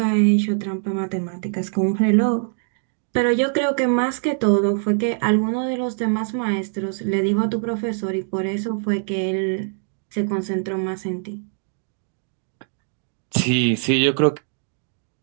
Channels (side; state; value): left; silent; digital silence